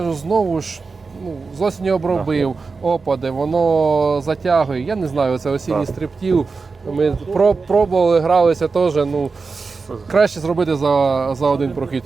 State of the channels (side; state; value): left; quieter; 4.4 dB